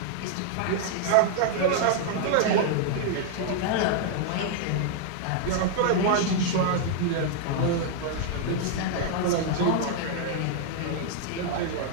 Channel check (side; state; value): both; different; correlation -0.01